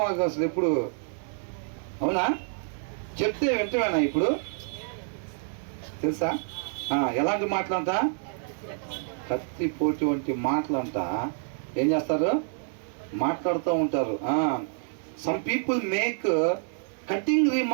మాకు అసలు ఎప్పుడు, అవునా? చెప్తే వెంటనేనా ఇప్పుడు? తెలుసా? ఎలాంటి మాటలంట? కత్తిపోటు వంటి మాటలంట. ఏం చేస్తారు? మాట్లాడుతూ ఉంటారు. Some people make cutting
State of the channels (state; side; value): silent; left; 59 dB below the other